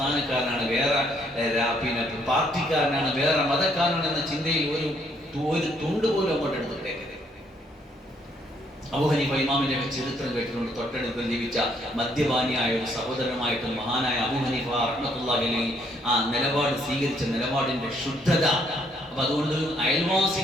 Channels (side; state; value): both; normal; correlation 0.69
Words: വേറെ പാർട്ടിക്കാരനാണ്, വേറെ മതക്കാരനാണ് എന്ന ചിന്തയിൽ ഒരു തുണ്ട് പോലും അങ്ങോട്ട് എടുത്തിട്ടേക്കരുത്. അബൂ ഹനീഫ ഇമാമിന്റെ ചരിത്രം കേട്ടിട്ടുണ്ട്. തൊട്ടടുത്ത് ജീവിച്ച മദ്യപാനിയായ ഒരു സഹോദരനുമായിട്ട് മഹാനായ അബൂ ഹനീഫ റഹ്മത്തുള്ളാഹി അലൈഹി ആ നിലപാട് സ്വീകരിച്ച നിലപാടിന്റെ ശുദ്ധത. അപ്പൊ അതുകൊണ്ട്